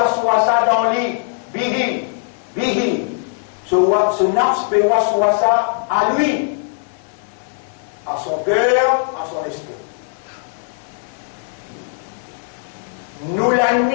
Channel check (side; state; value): right; silent; 65 dB below the other